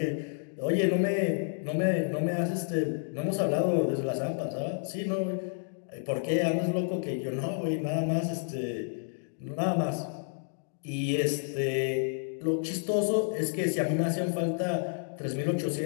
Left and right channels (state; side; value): silent; right; digital silence